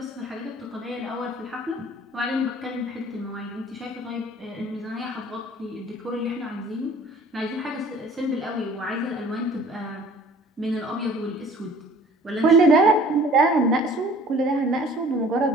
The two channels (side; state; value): both; normal; correlation 0.51